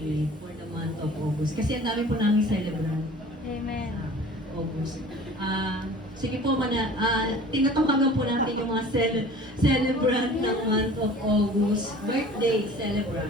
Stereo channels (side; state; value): both; normal; correlation 0.45